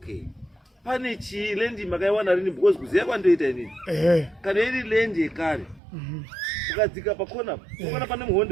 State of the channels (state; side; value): drops out; left; at 5.8 s